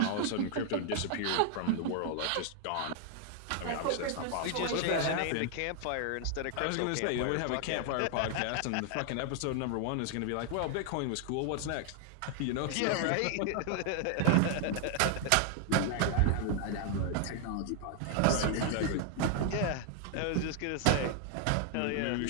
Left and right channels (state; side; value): different; both; correlation 0.00